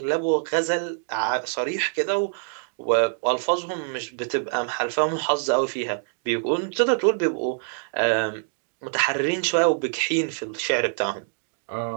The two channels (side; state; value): left; silent; digital silence